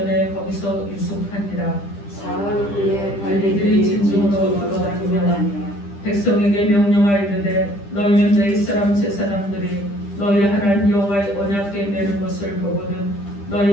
거기서 유숙하니라. 사흘 후에 관리들이 진중으로 돌아다니며 백성에게 명령하여 이르되 너희는 내 이스라엘 제사장들이 너희 하나님 여호와의 언약궤 매는 것을 보거든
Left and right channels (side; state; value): right; late; 10 ms